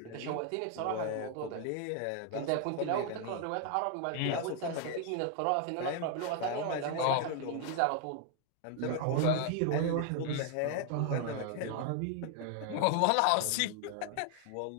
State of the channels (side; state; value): both; different; correlation 0.00